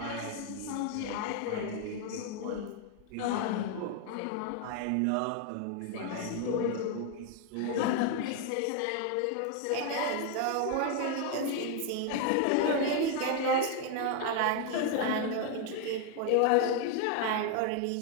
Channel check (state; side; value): different; both; correlation 0.00